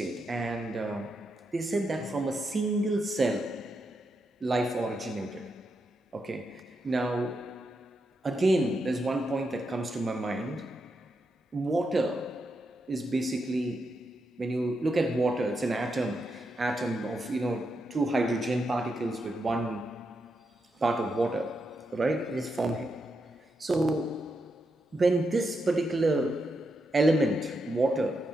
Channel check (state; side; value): normal; both; correlation 0.84